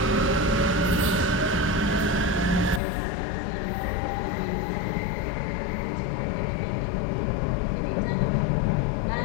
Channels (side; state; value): right; drops out; at 2.8 s